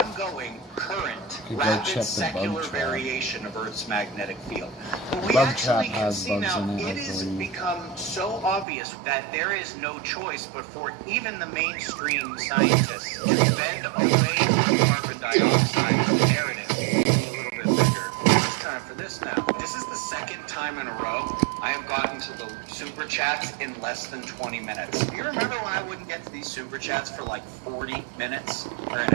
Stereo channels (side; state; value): left; drops out; at 8.7 s